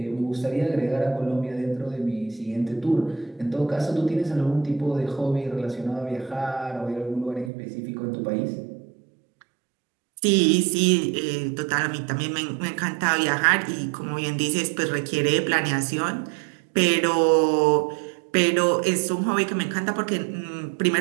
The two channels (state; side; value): drops out; left; at 7.5 s